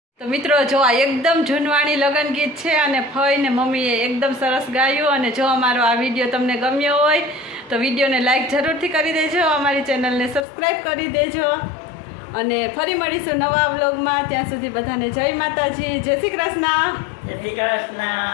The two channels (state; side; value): drops out; right; at 10.5 s